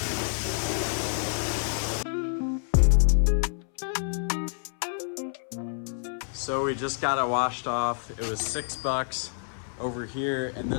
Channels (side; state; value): right; silent; 59 dB below the other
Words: So we just got it washed off. It was $6 over here, and